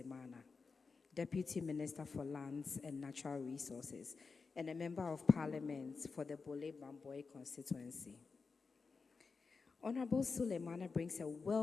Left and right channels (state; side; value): quieter; right; 4.7 dB